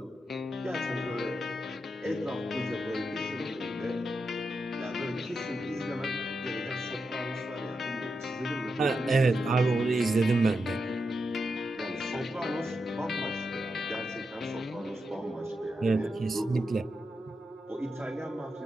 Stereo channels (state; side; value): normal; both; correlation 0.86